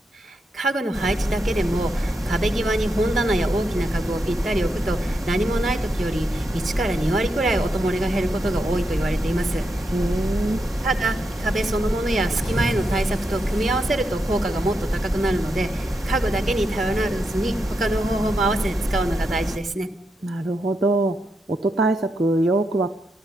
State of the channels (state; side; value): normal; both; correlation 0.84